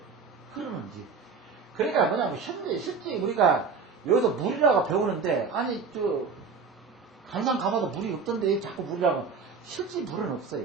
흐르는지. 그러니까 뭐냐면 실제 우리가 여기서 물이라고 배우는데 아니 강산 가봐도 물이 없던데 자꾸 물이라고 실제 물은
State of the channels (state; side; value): quieter; left; 5.1 dB